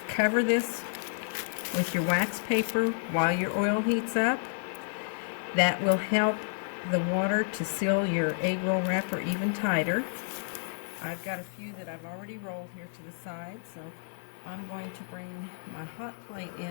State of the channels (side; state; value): right; silent; digital silence